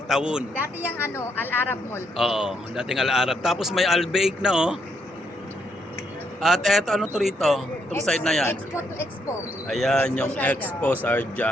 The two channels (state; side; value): normal; both; correlation 0.75